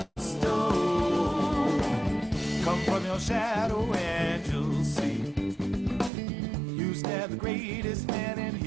stoned. Come from your shadow and you'll see. You stab the greatest man and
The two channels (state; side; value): drops out; left; at 6.1 s